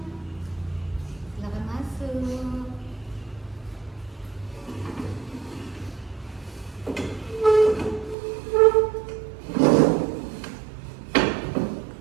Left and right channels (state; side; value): drops out; left; at 8.2 s